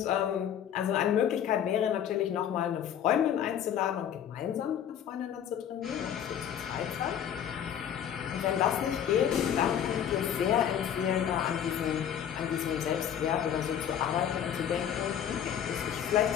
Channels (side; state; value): right; quieter; 9.4 dB